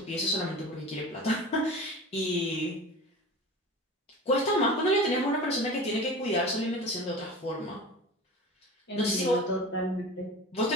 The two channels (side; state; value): both; normal; correlation 0.35